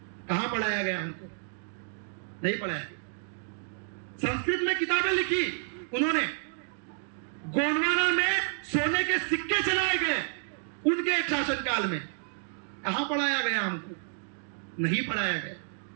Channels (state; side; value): silent; left; 58 dB below the other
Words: कहां पढ़ाया गया हमको? नहीं पढ़ाया। संस्कृत में किताबें लिखी उन्होंने, गोंडवाना में सोने के सिक्के चलाए गए उनके एक शासनकाल में। कहां पढ़ाया गया हमको? नहीं पढ़ाया गया।